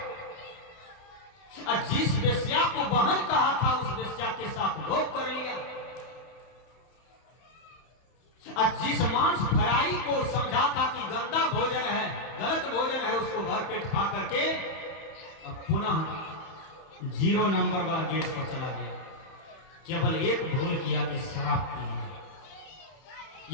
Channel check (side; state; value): right; late; 31 ms